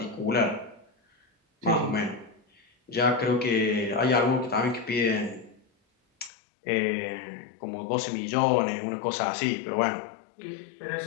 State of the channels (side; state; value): right; drops out; at 6.3 s